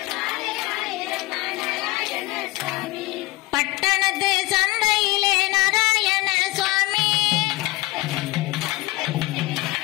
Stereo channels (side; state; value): right; quieter; 19.9 dB